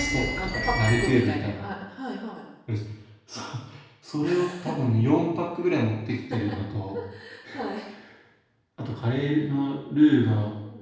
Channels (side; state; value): both; identical; correlation 1.00